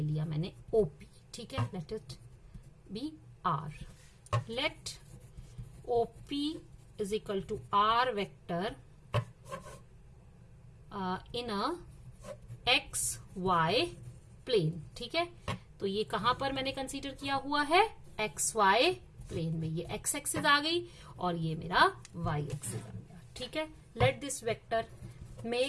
मैंने ओपी, ठीक है, let it be R. Let OP is equal to R vector in a XY plane, ठीक है। तो ये कहां पर मैंने कंसीडर किया हुआ है? XY प्लेन में। ये X एक्सिस आ गई और ये मेरा Y एक्सिस आ गई। ठीक है। Let this vector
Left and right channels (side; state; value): both; identical; correlation 1.00